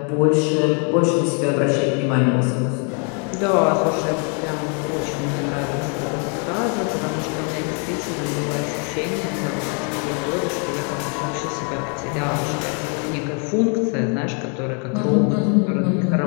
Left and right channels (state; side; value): quieter; right; 38.7 dB